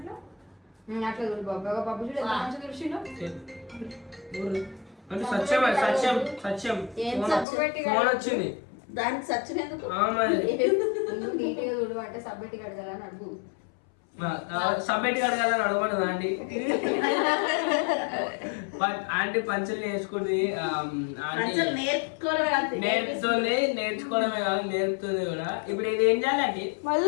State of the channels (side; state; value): right; drops out; at 7.5 s